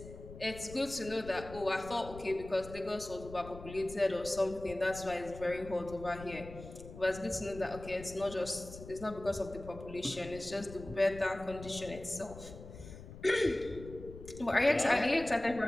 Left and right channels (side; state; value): left; noise; rumble, 14 dB below the sound